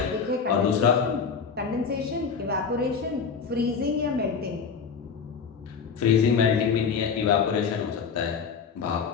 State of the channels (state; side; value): quieter; right; 6.0 dB